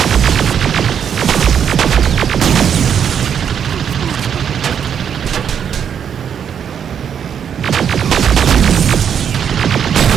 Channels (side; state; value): left; quieter; 8.1 dB